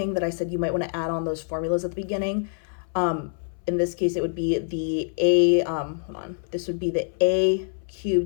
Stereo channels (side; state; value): right; silent; 61 dB below the other